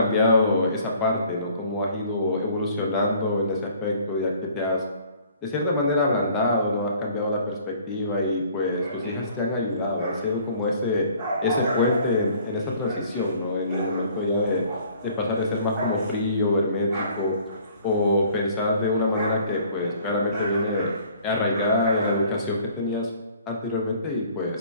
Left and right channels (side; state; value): both; inverted; correlation -0.55